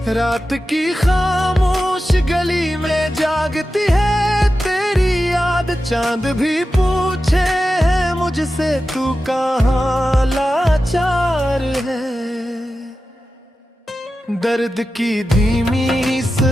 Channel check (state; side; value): normal; both; correlation 0.92